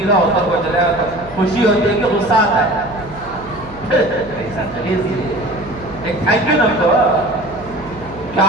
اتر کو چلے گا. خوشی ہوتی ہے کہ غصہ آتا ہے. ایسا چلیے ایک تھینک یو نہ تو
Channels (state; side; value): noise; right; hum, 18 dB below the sound